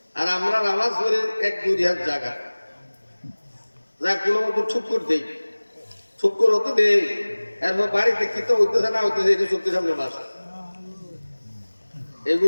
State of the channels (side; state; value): both; inverted; correlation -1.00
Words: আর আমরা নামাজ পড়ি 1-2 হাত জায়গা যা কোনো মতো ঠুকুর দেই, ঠুকুর হতো দেই, এরপর বাড়িতে কি তো হইতেছে না হইতেছে এটা চোখের সামনে বাসা,